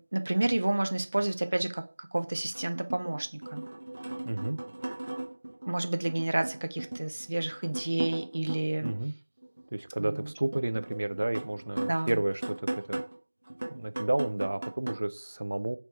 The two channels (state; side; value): inverted; both; correlation -1.00